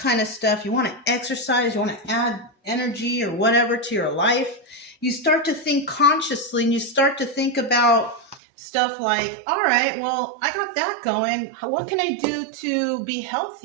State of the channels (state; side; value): drops out; left; at 8.4 s